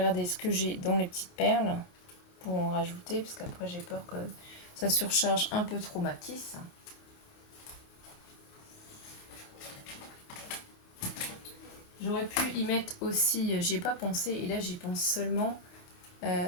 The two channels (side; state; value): right; late; 28 ms